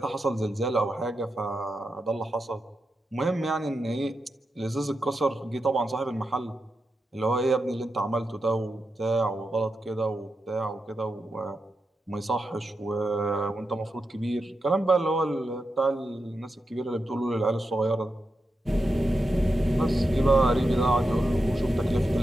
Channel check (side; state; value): both; normal; correlation 0.88